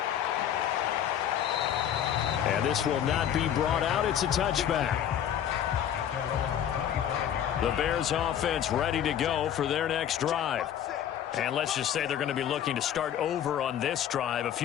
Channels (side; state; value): right; quieter; 9.9 dB